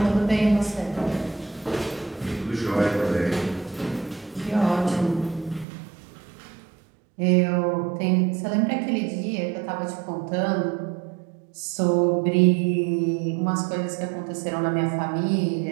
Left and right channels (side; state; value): left; drops out; at 5.7 s